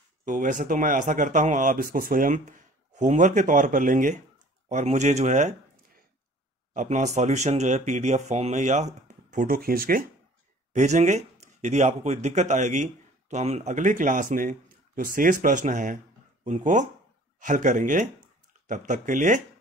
तो वैसे तो मैं आशा करता हूँ आप इसको स्वयं होमवर्क के तौर पर लेंगे और मुझे जो है अपना सॉल्यूशन जो है PDF फॉर्म में या फ़ोटो खींच के भेजेंगे। यदि आपको कोई दिक्कत आएगी तो हम अगली क्लास में जो शेष प्रश्न हैं उनको हल करेंगे। तब तक के लिए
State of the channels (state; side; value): normal; both; correlation 0.50